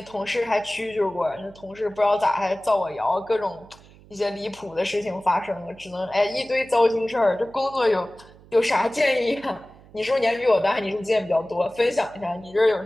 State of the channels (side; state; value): right; noise; hum, 24 dB below the sound